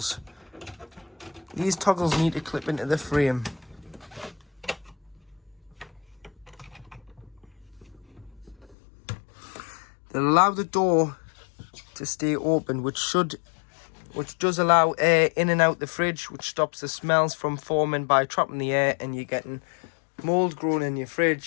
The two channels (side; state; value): right; drops out; at 8.8 s